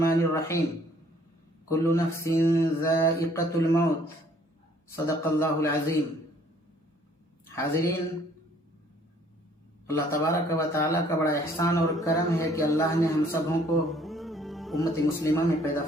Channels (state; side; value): normal; both; correlation 0.60